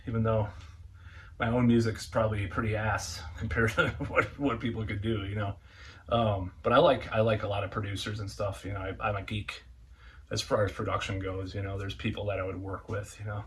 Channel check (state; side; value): identical; both; correlation 1.00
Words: even though my own music's probably pretty ass compared to what people could do, But I like a lot of producers and stuff. I'm a geek as far as production goes. There's people that I would work with.